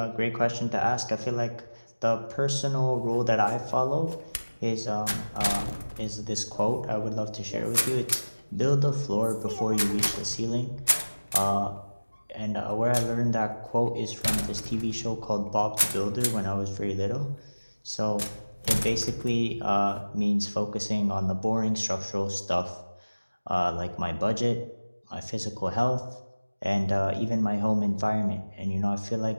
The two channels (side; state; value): both; inverted; correlation -1.00